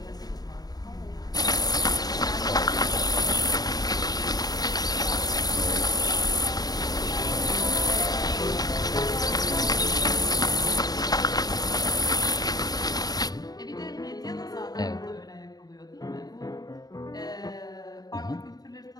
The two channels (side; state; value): right; late; 0.19 ms